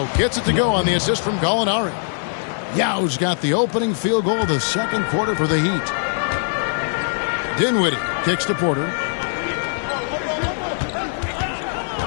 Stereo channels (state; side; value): silent; right; 62 dB below the other